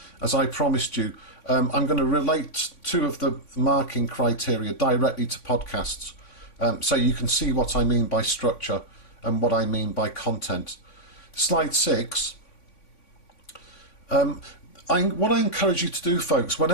As I promised you, I'm going to relate two of the marking criteria directly to podcasts, so you can see what I mean by structure and what I mean by content. Slide 6. What I encourage you to do, folks,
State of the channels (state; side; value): late; right; 3.5 ms